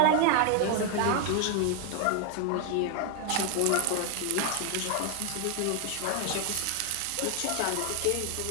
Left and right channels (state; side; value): different; both; correlation 0.01